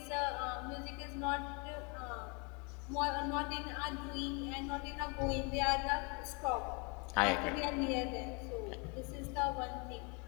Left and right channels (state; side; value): quieter; right; 32.5 dB